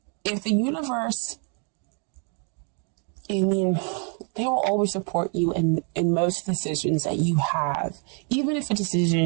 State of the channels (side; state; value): left; quieter; 39.6 dB